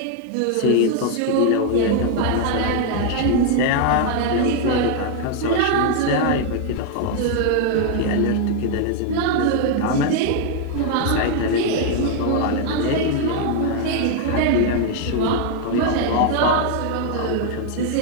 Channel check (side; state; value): both; different; correlation 0.00